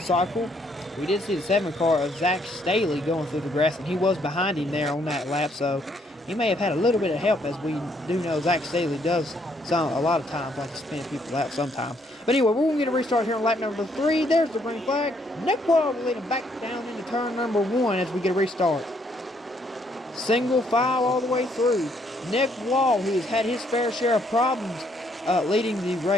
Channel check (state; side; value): normal; both; correlation 0.70